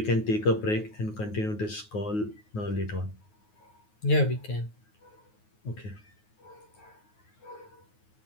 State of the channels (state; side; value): late; right; 9.5 ms